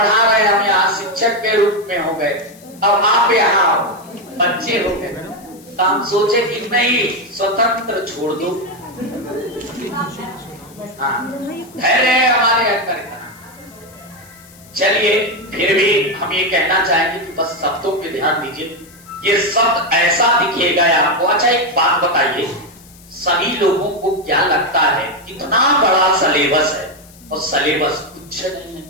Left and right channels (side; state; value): left; noise; hiss, 24 dB below the sound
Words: रहे, हम यहाँ शिक्षक के रूप में हो गए, अब आप यहाँ बच्चे हो गए, तो हम सोचे कि नहीं स्वतंत्र छोड़ दो। हाँ, धैर्य हमारे अंदर इतना। चलिए फिर भी हम ये कहना चाहेंगे कि बस शब्दों पे ध्यान दीजिए, ये शब्द ऐसा दिखेगा आपको। अच्छा एक बात बताइए, सभी लोगों को क्या लगता है कितना बड़ा सिलेबस है, और सिलेबस कुछ नहीं है।